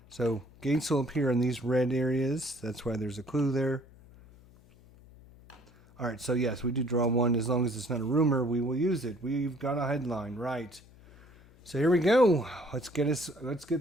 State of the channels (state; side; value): noise; left; hum, 25 dB below the sound